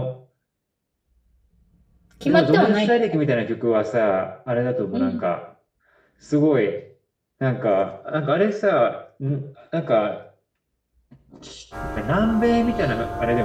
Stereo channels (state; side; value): identical; both; correlation 1.00